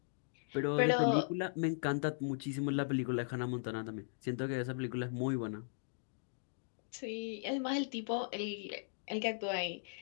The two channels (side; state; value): right; silent; digital silence